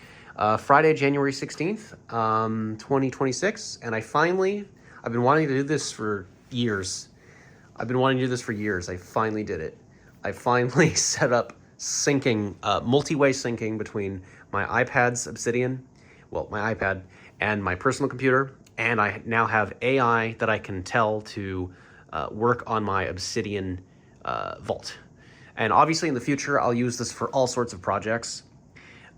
Friday, January 16th, 2026. And I've been wanting to do this for years. I finally did it. I finally set up syncing, multi-way syncing between my iPad's Obsidian, well, my iPad and my personal computer. And I now have AI that I can tell to work on my Obsidian vault. And obviously in the future, I'll use this for all sorts of projects.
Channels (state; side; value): identical; both; correlation 1.00